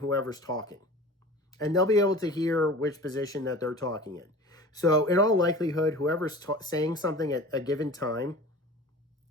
talking. And they'll be able to hear which position that they're talking in. So in all likelihood, whoever's saying something at a given time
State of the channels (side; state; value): both; normal; correlation 0.39